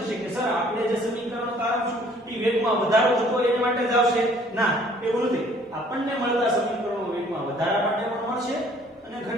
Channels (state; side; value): normal; both; correlation 0.57